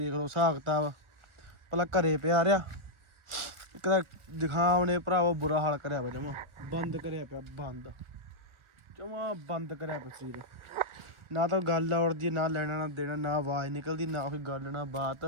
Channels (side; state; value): left; late; 1.4 ms